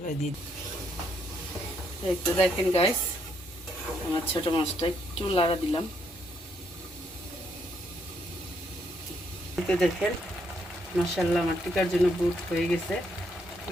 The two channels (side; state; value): both; normal; correlation 0.74